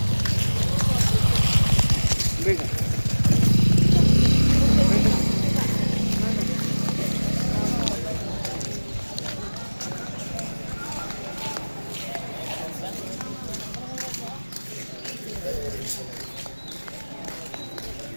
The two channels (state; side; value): inverted; both; correlation -1.00